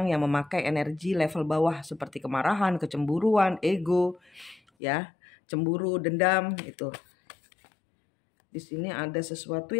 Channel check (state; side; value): drops out; right; at 4.6 s